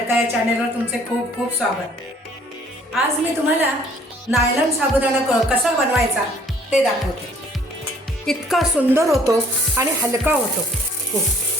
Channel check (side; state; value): both; normal; correlation 0.58